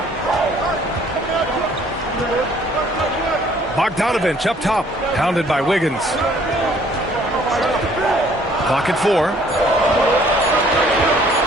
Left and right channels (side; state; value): both; normal; correlation 0.59